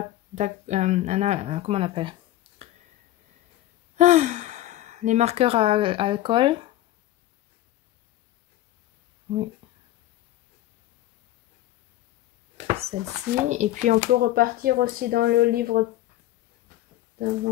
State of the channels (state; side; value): quieter; right; 14.5 dB